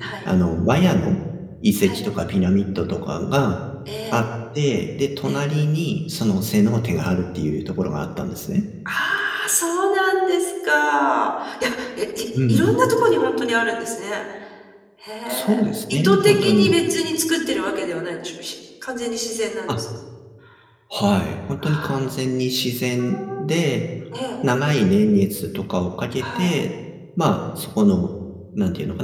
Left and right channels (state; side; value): identical; both; correlation 1.00